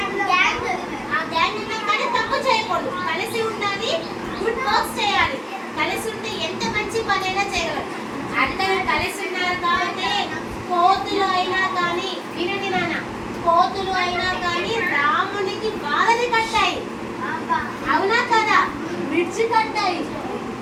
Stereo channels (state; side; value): identical; both; correlation 1.00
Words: ఆ గ్యాంగ్ ఉన్నా కానీ తప్పు చేయకూడదు. కలిసి ఉండాలి, గుడ్ వర్క్స్ చేయాలి. కలిసి ఉంటే ఎంత మంచి పనైనా చేయగలరు. అందరూ కలిసి ఉన్నారు కాబట్టి కోతులు అయినా కానీ, వినండి నాన్న, కోతులు అయినా కానీ రామునికి బాధని కట్టాయి. అవునా కదా? బ్రిడ్జ్ కట్టాయి.